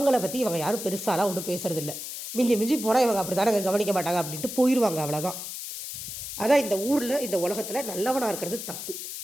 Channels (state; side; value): noise; left; hiss, 8 dB below the sound